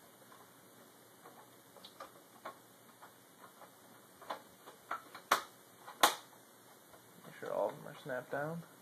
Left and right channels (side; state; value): both; identical; correlation 1.00